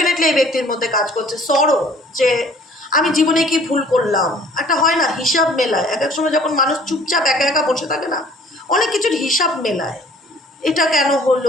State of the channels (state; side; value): normal; both; correlation 0.54